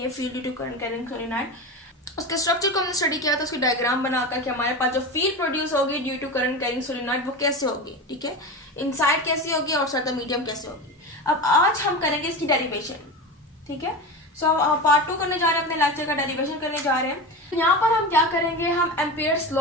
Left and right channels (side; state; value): both; normal; correlation 0.25